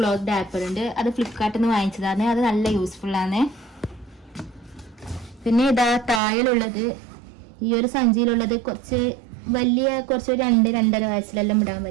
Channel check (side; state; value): left; drops out; at 6.2 s